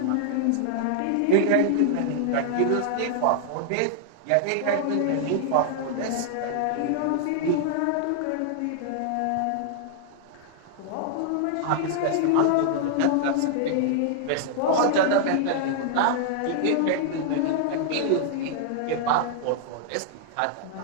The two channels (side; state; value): both; different; correlation -0.01